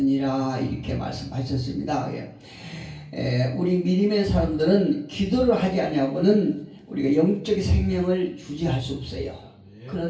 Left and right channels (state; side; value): identical; both; correlation 1.00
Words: 이렇게 말씀하셨습니다. 우리 믿음의 사람들은 기도를 하지 않냐고는 우리가 영적 생명을 유지할 수 없어요.